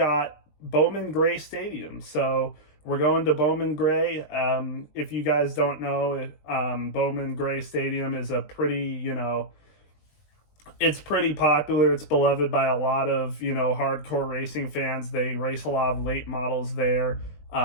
Bowman Gray Stadium. So we're going to Bowman Gray. If you guys don't know, Bowman Gray Stadium is a pretty, it's pretty popular. It's beloved by a lot of, hardcore racing fans. They race a lot of late models there.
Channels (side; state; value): right; late; 20 ms